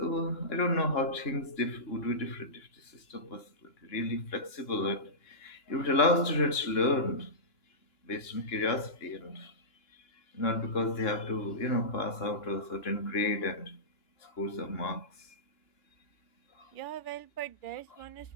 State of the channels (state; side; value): late; right; 2.9 ms